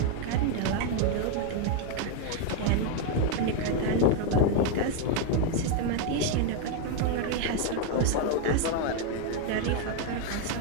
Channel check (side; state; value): both; different; correlation 0.01